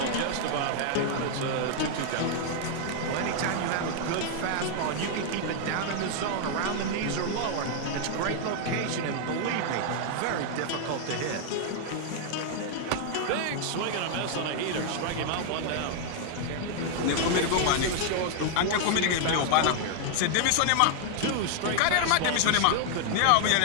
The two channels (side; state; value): both; different; correlation 0.00